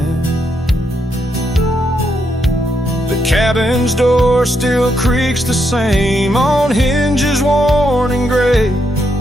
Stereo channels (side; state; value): both; normal; correlation 0.79